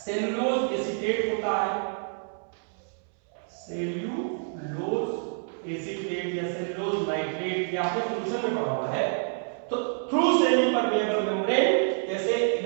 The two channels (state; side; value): silent; left; 60 dB below the other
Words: सेलुलोज एसीटेट होता है, सेल्यूलोज एसीटेट या सेलुलोज नाइट्रेट, ये आपने सॉल्यूशन में पढ़ा हुआ है। तो थ्रू सेमी परमिएबल मेम्ब्रेन, जैसे